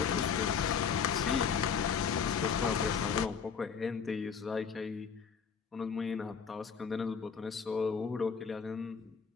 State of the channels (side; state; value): right; quieter; 6.4 dB